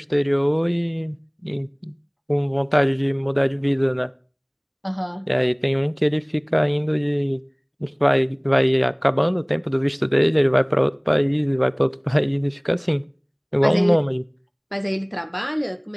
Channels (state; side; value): identical; both; correlation 1.00